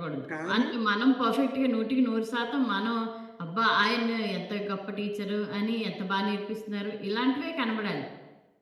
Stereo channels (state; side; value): identical; both; correlation 1.00